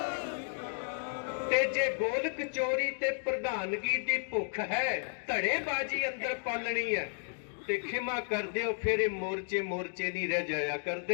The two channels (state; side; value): silent; right; 56 dB below the other